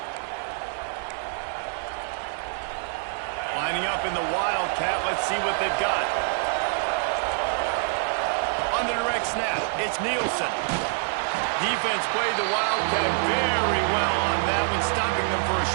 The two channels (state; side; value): silent; left; digital silence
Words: Lining up in the Wildcat, let's see what they've got. On the direct snap, it's Nielsen. Defense played the Wildcat very well on that one, stopping them for a